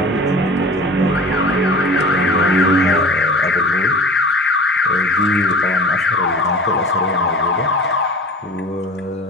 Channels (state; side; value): normal; both; correlation 0.40